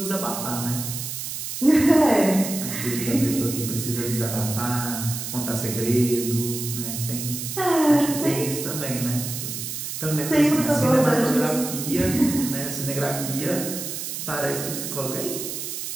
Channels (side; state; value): right; noise; hiss, 6 dB below the sound